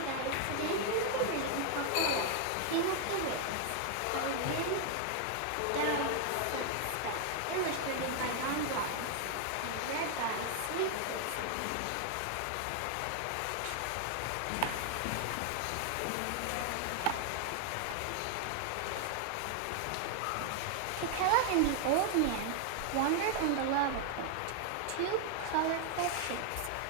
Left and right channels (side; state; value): both; different; correlation 0.00